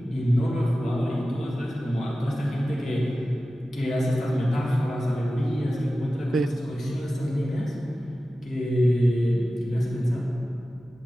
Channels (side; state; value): right; noise; hum, 29 dB below the sound